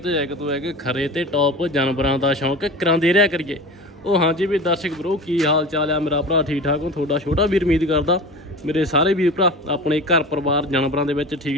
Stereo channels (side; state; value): both; normal; correlation 0.33